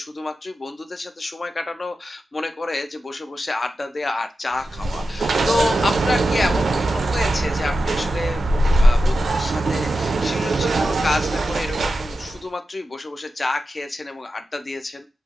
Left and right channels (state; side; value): normal; both; correlation 0.91